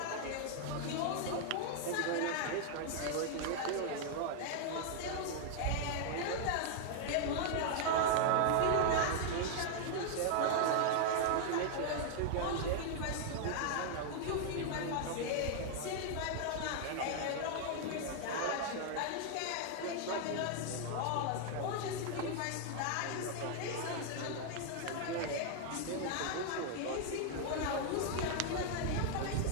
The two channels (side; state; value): both; different; correlation 0.00